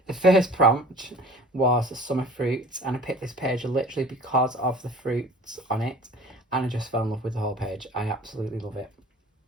the first prompt was summer fruits, and I picked this page literally because of the fruits on it, and I just fell in love with the whole page. I absolutely love it.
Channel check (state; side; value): normal; both; correlation 0.45